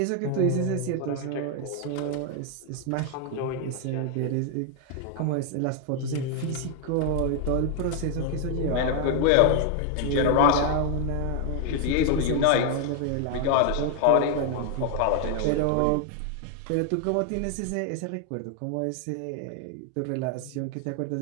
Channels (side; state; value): both; different; correlation 0.00